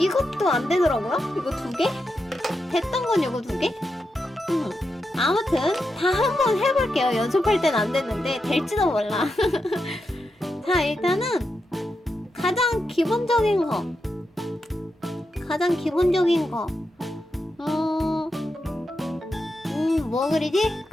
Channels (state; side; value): normal; both; correlation 0.87